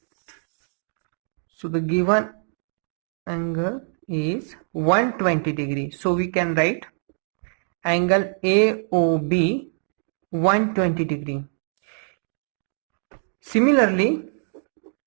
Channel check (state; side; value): silent; left; 59 dB below the other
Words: So the given angle is 120 degree. So we can write angle AOB 120 degree. Similarly,